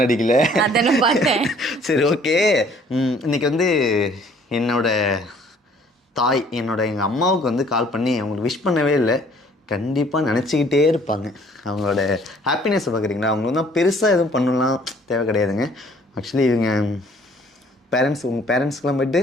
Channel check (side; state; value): both; normal; correlation 0.58